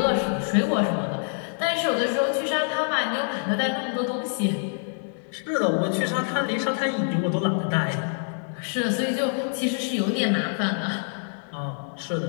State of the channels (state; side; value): silent; right; 61 dB below the other